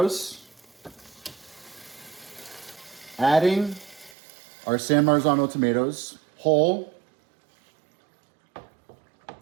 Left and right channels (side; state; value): left; drops out; at 4.2 s